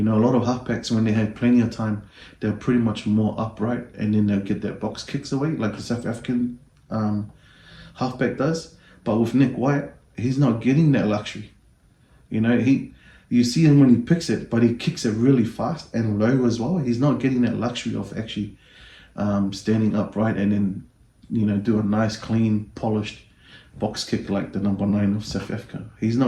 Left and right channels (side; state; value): both; identical; correlation 1.00